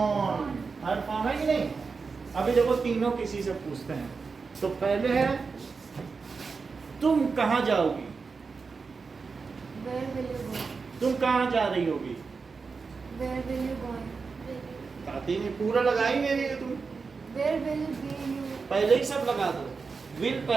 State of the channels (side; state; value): left; quieter; 4.8 dB